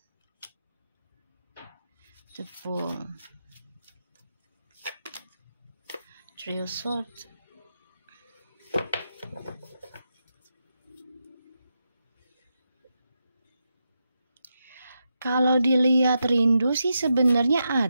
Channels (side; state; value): both; inverted; correlation -0.86